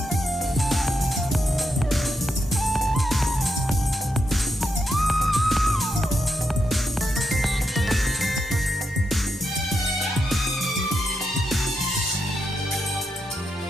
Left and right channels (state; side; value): normal; both; correlation 0.83